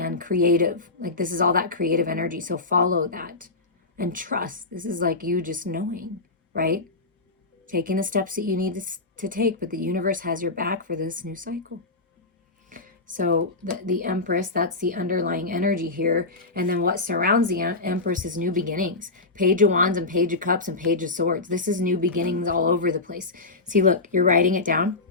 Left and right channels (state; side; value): quieter; right; 3.4 dB